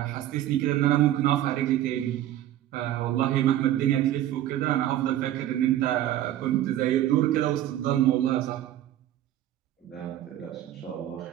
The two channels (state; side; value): quieter; left; 12.9 dB